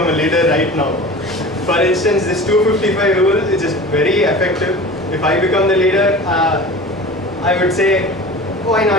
a leader right now. For instance, this 255 rule is just very effective. If I become the leader, I would say, why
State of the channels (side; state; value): both; normal; correlation 0.36